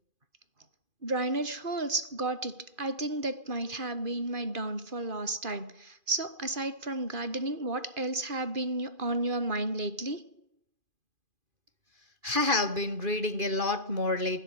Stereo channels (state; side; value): late; left; 2.5 ms